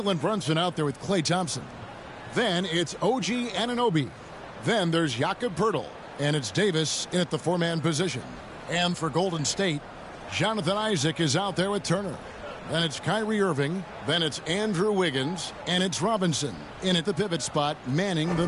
Brunson out there with Klay Thompson. Then it's OG Anunoby. Then there's Jakob Poeltl, and it's Davis in at the four-man position. And for Golden State, Jonathan Isaac is out there with Turner. Then it's Kyrie Irving, then it's Andrew Wiggins, and it's Robinson in at the pivot spot, manning the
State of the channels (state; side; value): identical; both; correlation 1.00